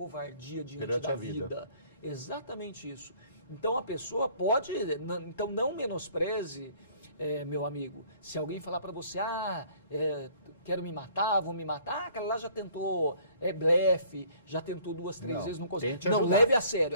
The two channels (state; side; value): inverted; both; correlation -0.56